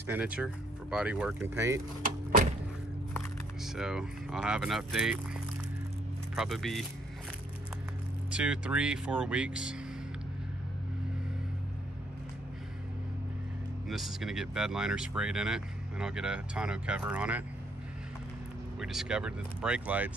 for body work and paint. So I'll have an update, probably be 2, 3, 4 weeks. And this is gonna get bed liner sprayed in it, and I'll get a tonneau cover on it. We discovered that the brake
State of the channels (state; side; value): normal; both; correlation 0.68